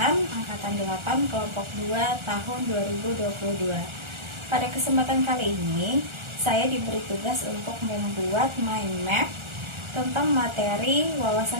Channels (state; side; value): late; left; 1.4 ms